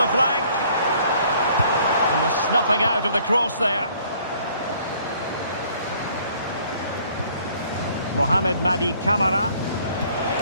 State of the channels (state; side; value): inverted; both; correlation -0.60